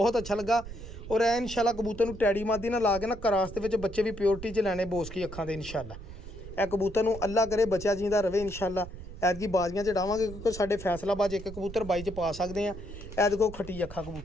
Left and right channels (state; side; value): noise; right; rumble, 12 dB below the sound